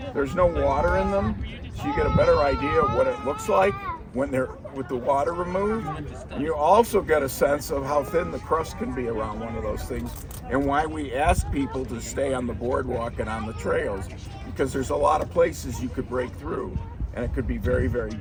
There's no water in them, so you get a better idea of what it looks like when they're with the water removed. And you also get a sense of how thin the crust can be around one of those things, and why we ask people to stay on the boardwalk and on the trails, because there's a lot of places you could break through, and it could be very, very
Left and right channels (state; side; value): identical; both; correlation 1.00